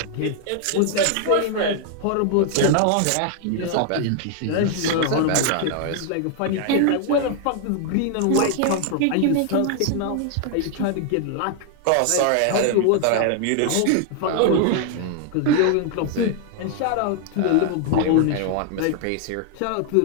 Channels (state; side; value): different; both; correlation 0.00